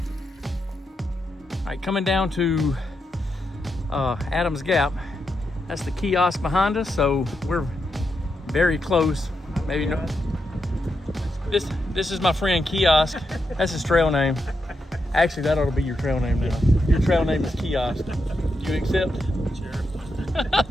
All right, coming down to Adams Gap. That's the kiosk behind us, so we're very close. Maybe no. This is my friend Kiosk. That's his trail name. Actually, that ought to be your trail name now. Your trail name is Kiosk. Do you accept? Sure.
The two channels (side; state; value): both; normal; correlation 0.84